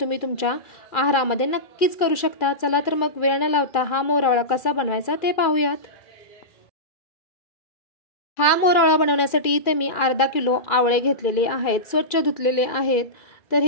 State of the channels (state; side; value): late; right; 2.4 ms